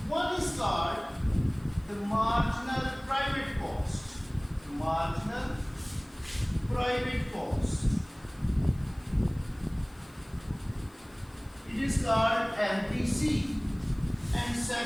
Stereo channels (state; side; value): noise; left; hiss, 28 dB below the sound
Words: One is called the marginal private cost. Marginal private cost. It is called MPC, and